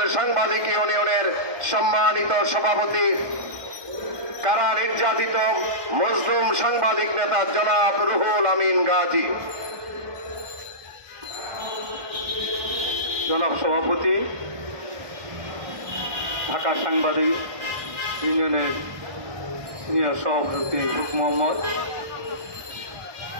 সাংবাদিক ইউনিয়নের সম্মানিত সভাপতি, কারা নির্যাতিত মজলুম সাংবাদিক নেতা জনাব রুহুল আমিন গাজী। জনাব সভাপতি, ঢাকা সাংবাদিক ইউনিয়নের সিনিয়র সভাপতি মোহাম্মদ,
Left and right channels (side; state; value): left; late; 1.2 ms